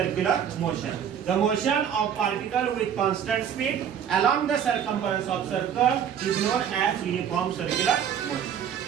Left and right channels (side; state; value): left; quieter; 8.7 dB